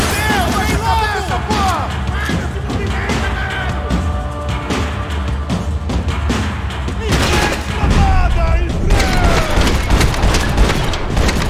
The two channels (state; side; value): identical; both; correlation 1.00